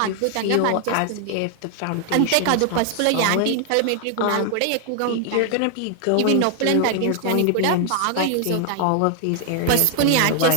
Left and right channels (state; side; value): different; both; correlation 0.00